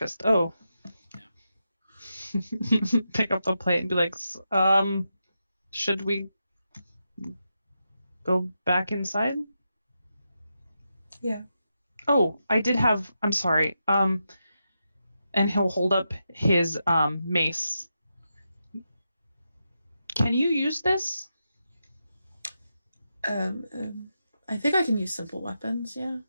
Oh. Yeah. Pick up the plate and be like, should we go back inside? Yeah. Oh, I'm sorry. And he'll hold up his mace. Can you use this? I think I can use simple weapons, yeah.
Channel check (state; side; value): inverted; both; correlation -0.87